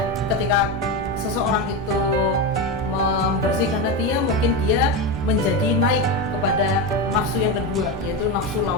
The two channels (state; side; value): normal; both; correlation 0.15